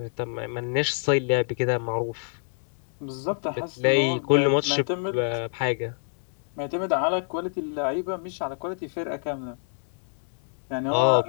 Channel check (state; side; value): silent; right; digital silence